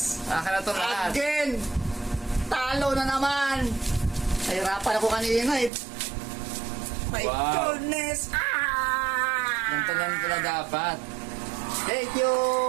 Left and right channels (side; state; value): left; drops out; at 5.7 s